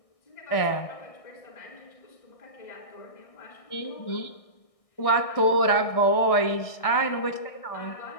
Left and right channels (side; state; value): right; late; 1.6 ms